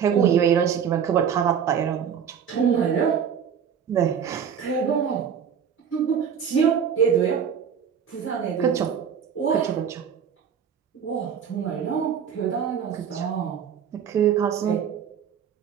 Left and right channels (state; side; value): quieter; left; 7.8 dB